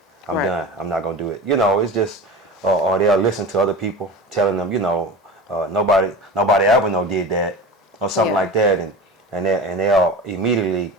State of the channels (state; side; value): normal; both; correlation 0.31